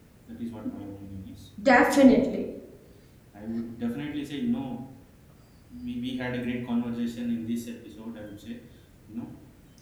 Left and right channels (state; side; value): identical; both; correlation 1.00